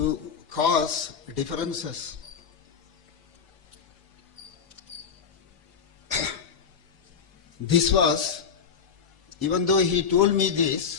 cause differences. This was, even though he told me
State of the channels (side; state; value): right; quieter; 6.6 dB